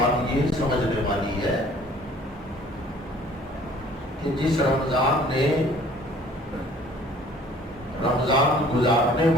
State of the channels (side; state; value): both; normal; correlation 0.53